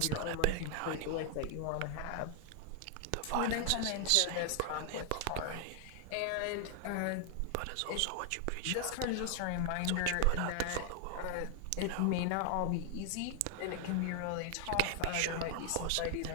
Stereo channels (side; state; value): both; different; correlation 0.00